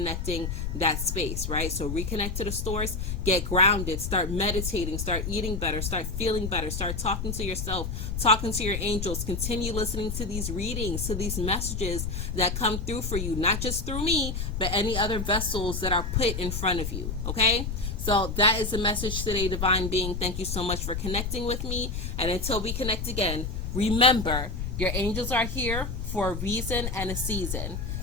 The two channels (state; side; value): noise; left; rumble, 4 dB below the sound